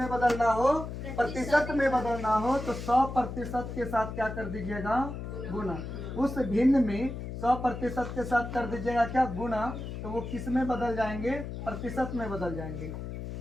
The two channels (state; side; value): noise; left; hum, 7 dB below the sound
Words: बदलना हो, प्रतिशत में बदलना हो, तो 100% के साथ क्या कर दीजिएगा, गुना। उस भिन्न में 100% के साथ कर दीजिएगा क्या, गुना। तो वो किस में बदल जाएंगे, प्रतिशत में बदल जाएंगे।